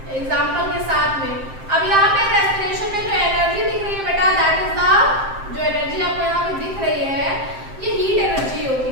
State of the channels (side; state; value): left; late; 7.7 ms